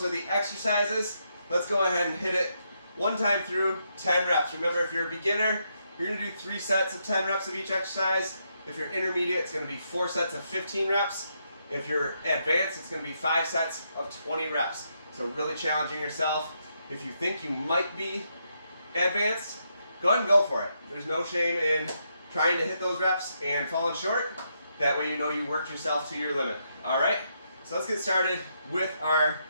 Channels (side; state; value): both; inverted; correlation -0.79